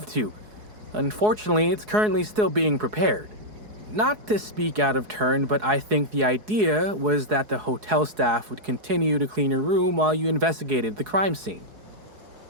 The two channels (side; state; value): left; late; 4.7 ms